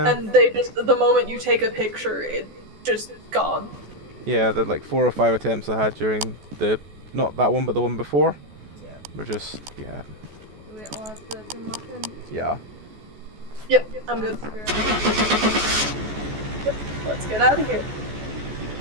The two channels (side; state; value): left; late; 14 ms